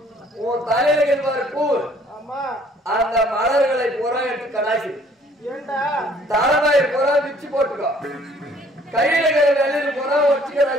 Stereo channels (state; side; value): normal; both; correlation 0.59